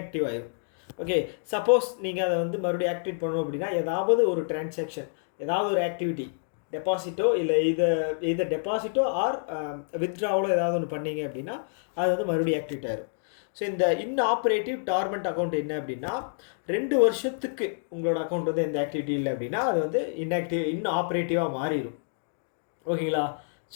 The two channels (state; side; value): silent; right; digital silence